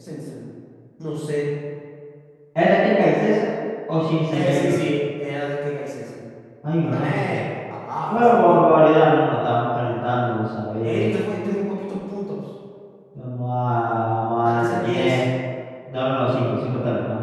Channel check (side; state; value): both; identical; correlation 1.00